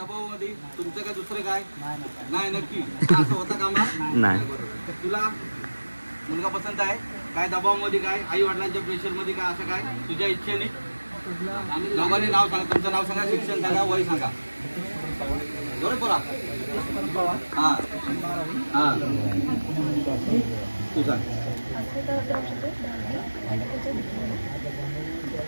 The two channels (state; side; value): inverted; both; correlation -1.00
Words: तुमचं काय दुसरं काय नाही नक्की असं होतं कामा नाही. तुला मुलगा पसंत आहे काय दबावामध्ये काय आई वडिलांच्या प्रेशरमध्ये काय असं काय तुझ्या इच्छेने दोघांनी नाव सांगा. तुमचं नाव सांगा, शिक्षण सांगा, वय सांगा. बरोबर हा हा तू सांग.